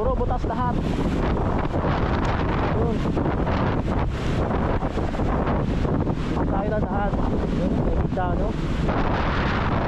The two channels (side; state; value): both; identical; correlation 1.00